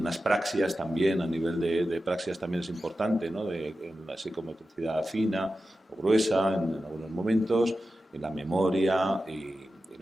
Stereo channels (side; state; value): both; normal; correlation 0.92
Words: praxias también, a nivel de praxias también es importante, ¿no? En la psicomotricidad fina o gruesa en algunos momentos, en la memoria y